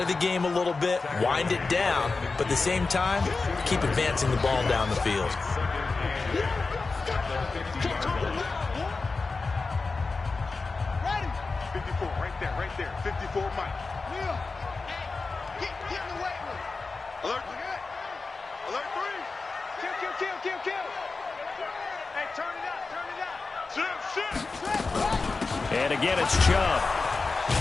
the game a little bit, wind it down, but at the same time, keep advancing the ball down the field. Right there. 54 Mike. Will. Get in the weight room. Alert. Alert 3. Kill. Hey, turn it out. Shit. And again, it's Chubb.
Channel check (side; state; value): right; quieter; 4.0 dB